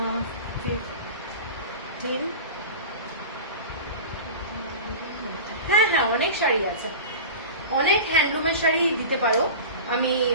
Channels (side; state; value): both; inverted; correlation -0.32